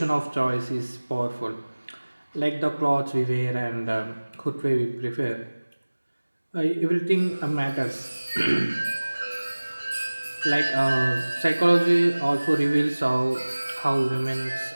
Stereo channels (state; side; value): inverted; both; correlation -1.00